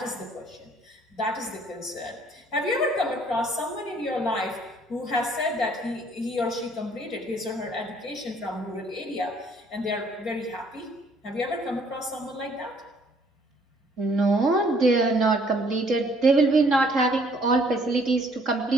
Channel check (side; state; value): both; normal; correlation 0.62